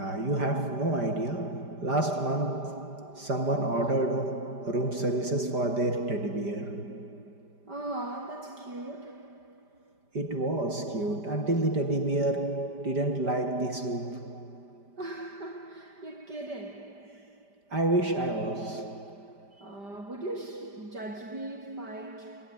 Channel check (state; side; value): late; left; 5.0 ms